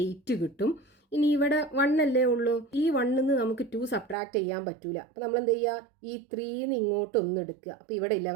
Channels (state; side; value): drops out; left; at 4.2 s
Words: 8 കിട്ടും. ഇനി ഇവിടെ 1 അല്ലേ ഉള്ളൂ, ഈ 1 നമുക്ക് 2 സബ്ട്രാക്ട് ചെയ്യാൻ പറ്റൂല. അപ്പോൾ നമ്മൾ എന്ത് ചെയ്യുക, ഈ 3 ഇങ്ങോട്ട് ഒന്ന് എടുക്കുക. അപ്പോൾ ഇവിടെ